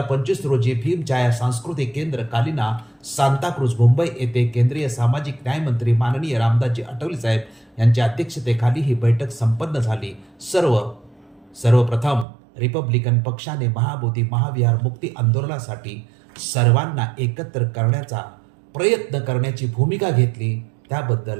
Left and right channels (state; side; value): drops out; left; at 12.2 s